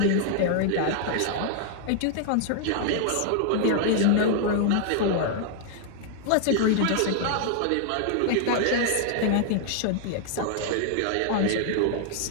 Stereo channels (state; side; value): different; both; correlation 0.00